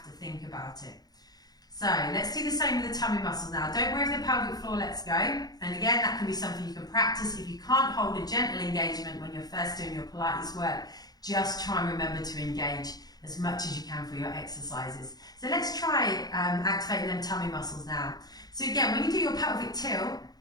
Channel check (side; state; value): right; late; 0.19 ms